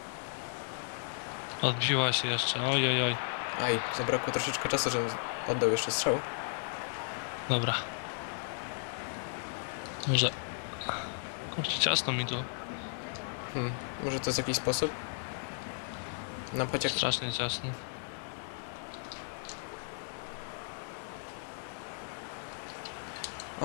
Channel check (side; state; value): right; silent; 55 dB below the other